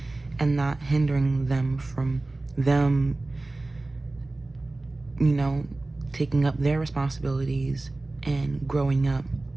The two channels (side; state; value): left; quieter; 3.0 dB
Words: and not hindering them from them, you know, taking up their responsibilities and growing up,